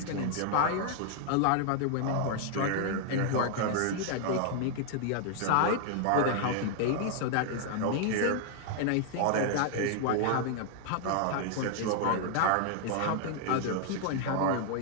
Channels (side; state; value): both; different; correlation 0.00